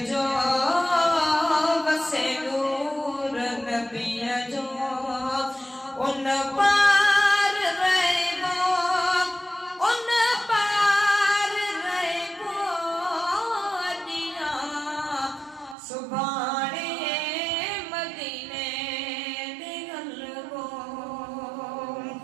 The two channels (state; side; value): drops out; left; at 15.8 s